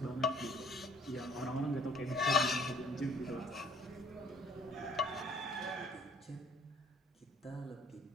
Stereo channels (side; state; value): both; normal; correlation 0.57